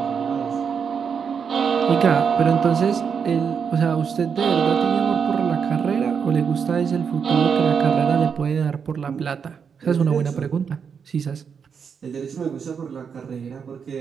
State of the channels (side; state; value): left; quieter; 6.6 dB